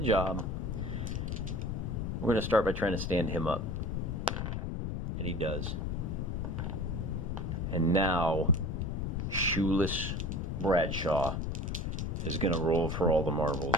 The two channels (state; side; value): noise; left; rumble, 1 dB below the sound